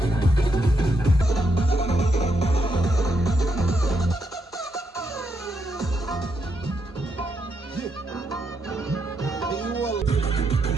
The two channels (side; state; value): both; normal; correlation 0.80